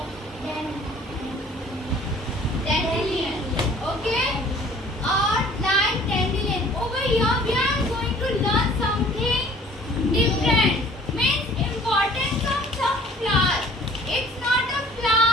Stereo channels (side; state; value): both; normal; correlation 0.52